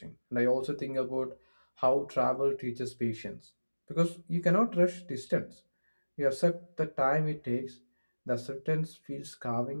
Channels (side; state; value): both; inverted; correlation -1.00